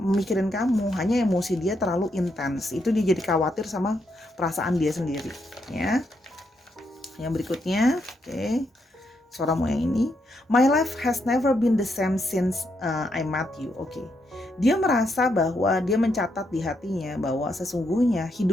kamu, hanya emosi dia terlalu intens. Itu dia jadi khawatir sama perasaan dia sendiri ya. Yang berikutnya, oke. Sora mau yang ini. My life has never been the same since I met you. Oke. Dia merasa bahwa dia mencatat di hatinya bahwa sesungguhnya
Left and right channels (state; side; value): normal; both; correlation 0.79